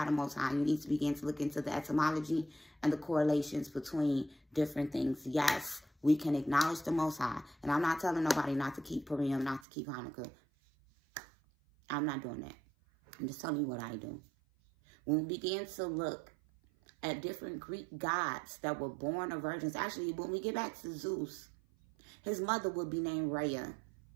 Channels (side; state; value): left; drops out; at 9.7 s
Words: the Most High. You need to begin to look into the etymology and the correlations between different things. Yes, we can acknowledge the Most High. And I'm not telling nobody not to keep Purim, not to keep Hanukkah. I'm not doing that. I'm just telling you what I do. When we begin to look at different Greek gods that were born of virgins, actually, when we get back to Zeus, his mother would be named Rhea.